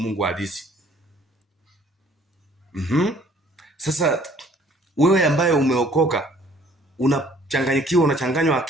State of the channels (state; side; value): normal; both; correlation 0.58